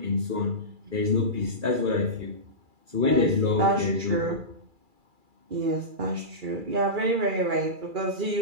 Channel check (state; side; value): late; left; 2.3 ms